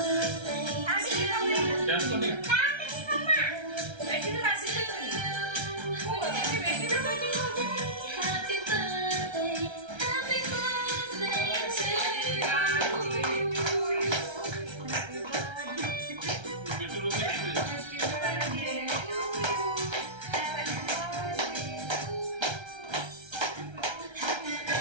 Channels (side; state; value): left; late; 1.3 ms